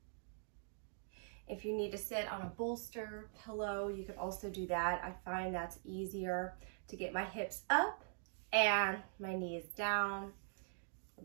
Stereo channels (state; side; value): silent; left; digital silence